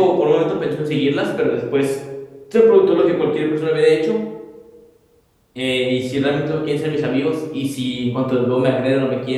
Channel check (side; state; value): both; identical; correlation 1.00